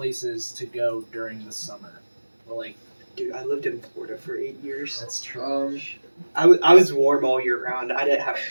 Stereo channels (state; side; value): inverted; both; correlation -1.00